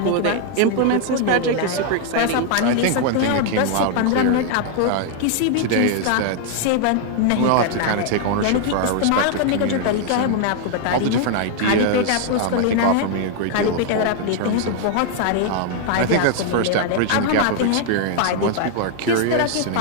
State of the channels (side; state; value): both; different; correlation 0.00